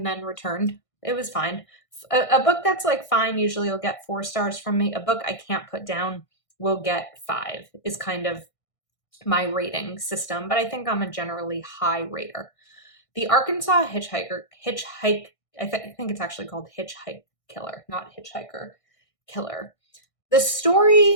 then returned. It was fine. A book that's like fine usually will get 4 stars from me. A book I can't put down will get 5 is kind of my rating system, but I think I'm a generally high rater. The Arkansas Hitchhike, I think it's actually called Hitchhike Killer, not Hitchhiker Killer. The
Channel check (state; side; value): late; right; 1.6 ms